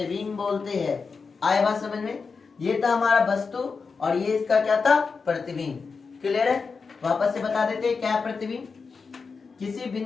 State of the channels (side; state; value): right; quieter; 4.9 dB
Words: बोलते हैं। आए बात समझ में, ये था हमारा वस्तु और ये इसका क्या था, प्रतिबिंब। क्लियर है, वापस से बता देते हैं क्या है प्रतिबिंब। किसी